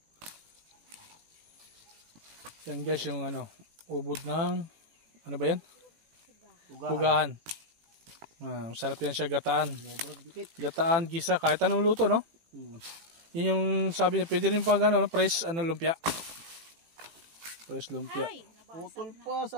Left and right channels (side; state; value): left; late; 18 ms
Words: Yan guys, yung ano, ubod ng, ano ba yan? Pugahan. Sarap yan siya, gataan. Gataan, gisa, kahit anong luto, no? Yun yung sabi niya, pwede rin pang ano, press, lumpia. Press lumpia. Ay, nabasag Putol na. pa,